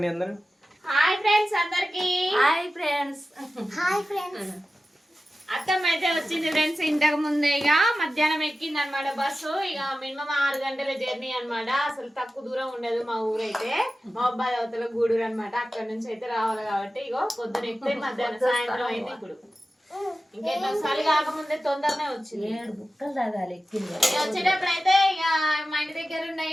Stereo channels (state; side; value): normal; both; correlation 0.94